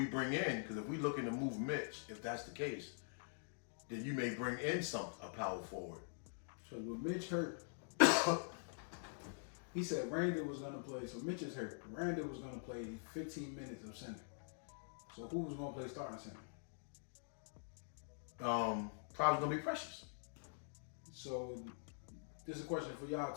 bring in, because if we looking to move Mitch, if that's the case, then you may bring in a power forward. So with Mitch hurt, he said Randall was gonna play. So Mitch is hurt. Randall was gonna play 15 minutes of center. So who was gonna play starting center? Probably gonna be Precious. So this is a question for y'all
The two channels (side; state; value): right; silent; digital silence